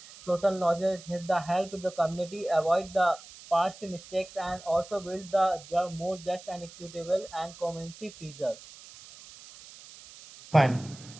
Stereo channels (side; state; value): right; noise; hiss, 18 dB below the sound